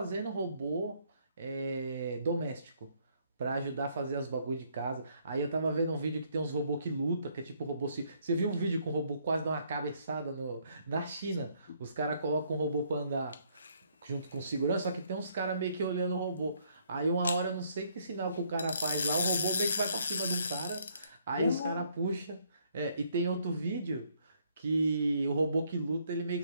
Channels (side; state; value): both; inverted; correlation -0.69